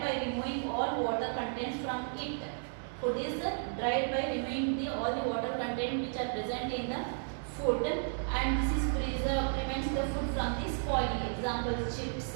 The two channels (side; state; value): left; silent; 55 dB below the other